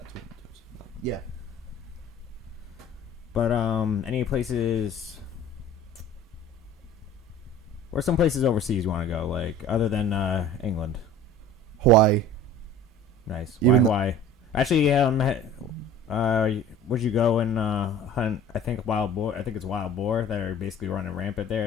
times 1,000. Yeah. But, any places... Where's some places overseas you want to go, like, other than England? Hawaii. Nice. Why Hawaii? Actually, would you go and hunt? I think wild boar. I think it's wild boar that are basically running rampant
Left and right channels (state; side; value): normal; both; correlation 0.43